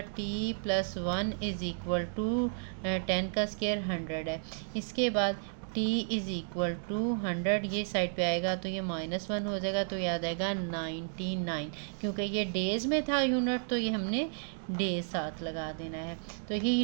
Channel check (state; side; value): silent; left; digital silence